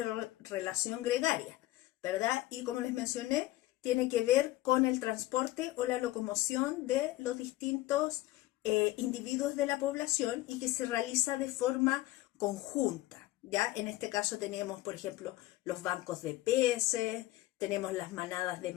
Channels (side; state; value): right; quieter; 17.0 dB